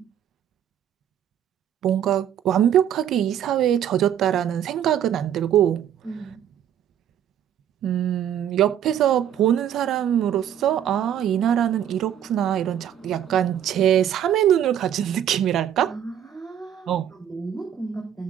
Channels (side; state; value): left; quieter; 9.9 dB